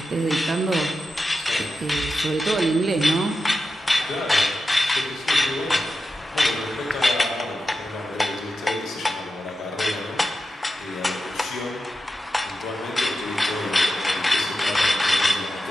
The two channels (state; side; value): normal; both; correlation 0.91